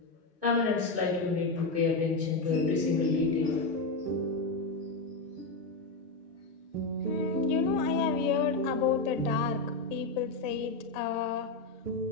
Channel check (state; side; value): quieter; right; 3.6 dB